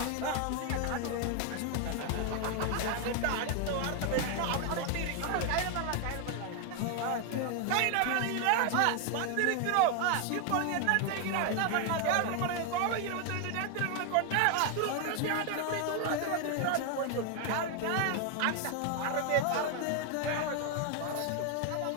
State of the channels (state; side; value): different; both; correlation 0.01